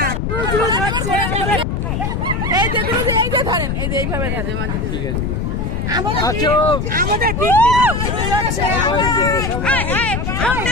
এই যে গুরুজি এই যে ধরেন, এই যে এইভাবে ধরেন। ঠিক আছে। আমাদের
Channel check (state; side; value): noise; left; rumble, 1 dB below the sound